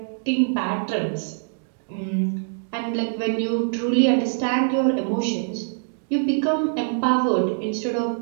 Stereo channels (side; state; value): left; silent; 63 dB below the other